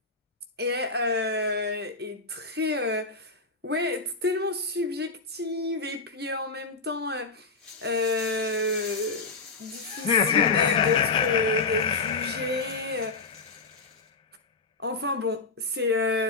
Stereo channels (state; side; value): quieter; right; 3.9 dB